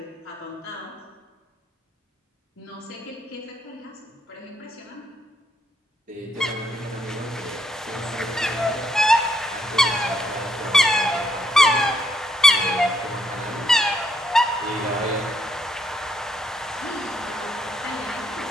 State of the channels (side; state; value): both; normal; correlation 0.74